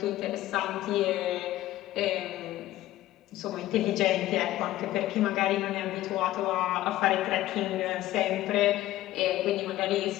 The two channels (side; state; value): right; quieter; 15.1 dB